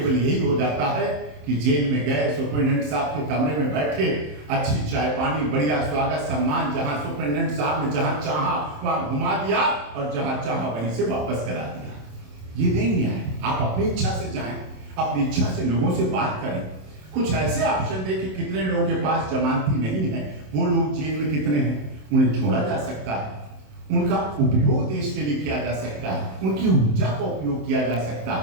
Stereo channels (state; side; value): late; left; 27 ms